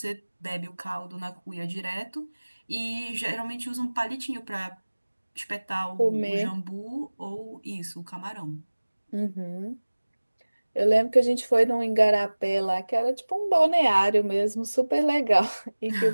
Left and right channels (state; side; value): inverted; both; correlation -1.00